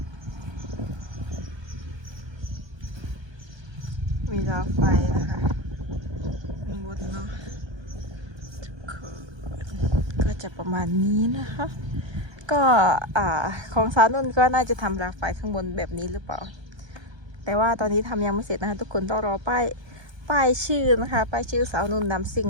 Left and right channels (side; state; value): left; late; 1.3 ms